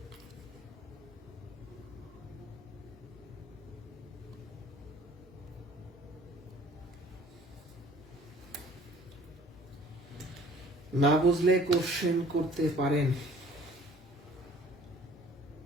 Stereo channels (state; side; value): normal; both; correlation 0.53